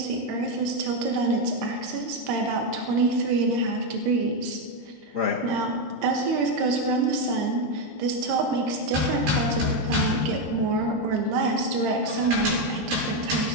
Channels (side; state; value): left; late; 13 ms